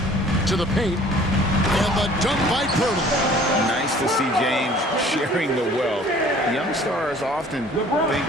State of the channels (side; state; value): both; normal; correlation 0.52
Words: To the paint. And the dunk by Pirtle. Nice to see James sharing the wealth. Young stars often think